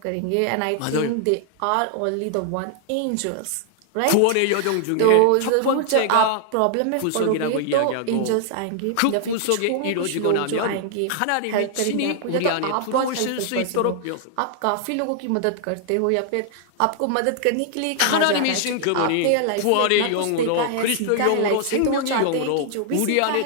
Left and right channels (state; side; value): different; both; correlation 0.00